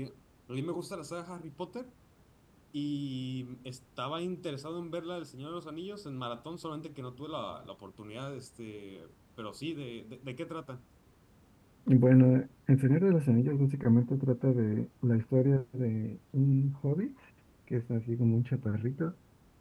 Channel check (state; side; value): identical; both; correlation 1.00